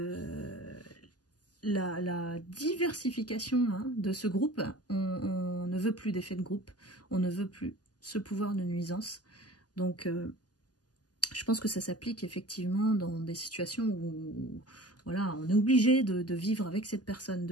la diversification, hein, de ce groupe. On ne veut plus d'effet de groupe, on ne veut plus ce pouvoir de nuisance. Donc, je pense que ça s'applique effectivement dans des situations où voilà, on est obligé de vivre avec cette personne,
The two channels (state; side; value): late; right; 0.68 ms